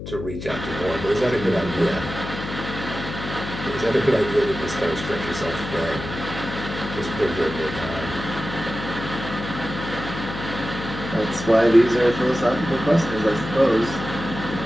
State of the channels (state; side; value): noise; left; hum, 9 dB below the sound